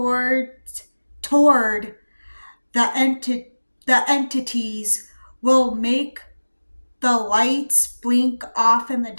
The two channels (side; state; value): both; inverted; correlation -1.00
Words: the entities will make the lights blink off in the